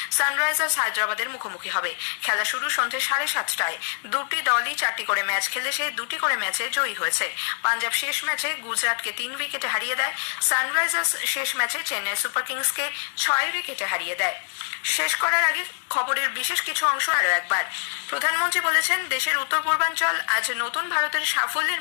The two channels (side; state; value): right; silent; 62 dB below the other